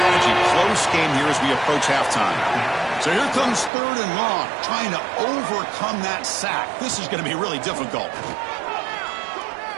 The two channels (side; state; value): left; drops out; at 3.7 s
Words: Close game here as we approach halftime. So here comes 3rd and long, trying to overcome that sack. This is going to be really difficult.